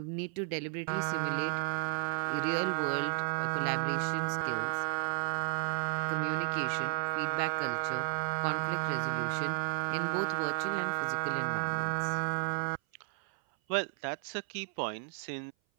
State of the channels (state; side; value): silent; left; 55 dB below the other